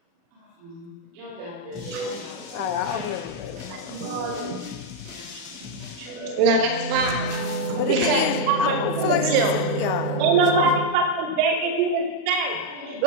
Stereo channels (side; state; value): left; late; 38 ms